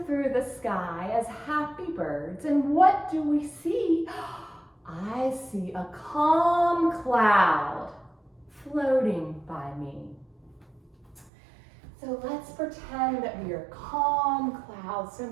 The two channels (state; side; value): drops out; left; at 11.3 s